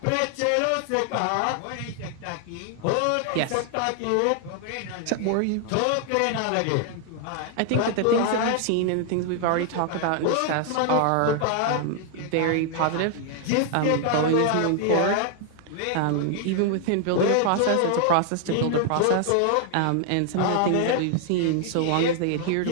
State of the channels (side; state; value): both; different; correlation 0.00